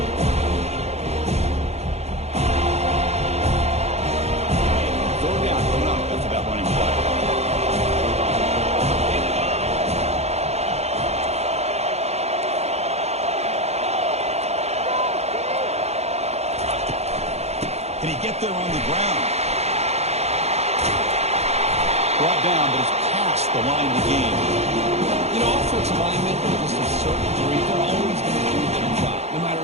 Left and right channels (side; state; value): left; late; 0.31 ms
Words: Can he get there on the ground? Brought down, but it's past the line of the game. You know, offensive linemen, to just a certain degree, they're always going to do their job, no matter